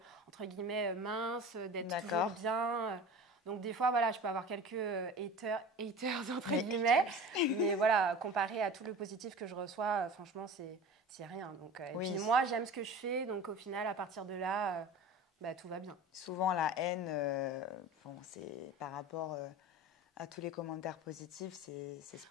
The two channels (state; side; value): normal; both; correlation 0.36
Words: entre guillemets mince, d'être toujours bien. Donc des fois, voilà, je peux avoir quelques haters entre guillemets, mais voilà, comparé à tout le positif que je reçois, franchement, c'est rien. Donc, et puis moi, j'aime ce que je fais, donc au final, à partir de là, tout va bien. Souvent, la haine, c'est par rapport à tous les commentaires positifs, c'est